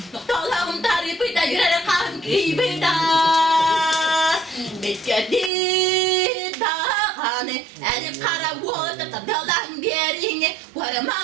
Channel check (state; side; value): drops out; left; at 5.5 s